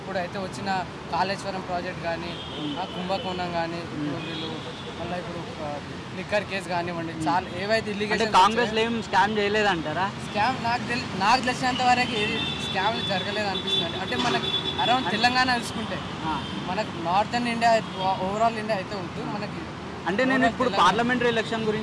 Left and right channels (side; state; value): both; identical; correlation 1.00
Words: వచ్చిన కాళేశ్వరం ప్రాజెక్ట్ కానీ, కుంభకోణం కానీ, వీళ్ళు మళ్ళీ ఇప్పుడు లిక్కర్ కేసు కానివ్వండి, చాలా ఏవైతే ఇల్లీగల్. కాంగ్రెస్ ఏం స్కామ్ చేయలేదంటారా? స్కామ్ నాకు తెలిసినంత వరకు ఏది స్కామ్లు జరగలేదు అనిపిస్తుంది. అంటే మనకి అరౌండ్ తెలంగాణ చూసుకుంటే మనకు నార్థన్ ఇండియా, ఓవరాల్ ఇండియా అయితే ఉంటుంది మనకి. అంటే నేను ఇప్పుడు పార్లమెంటరీ ఎలక్షన్